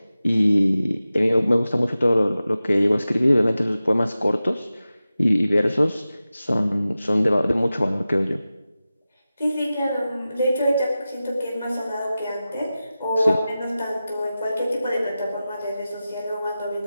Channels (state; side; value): inverted; both; correlation -0.94